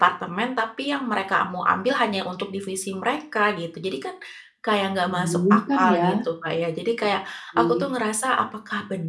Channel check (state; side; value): identical; both; correlation 1.00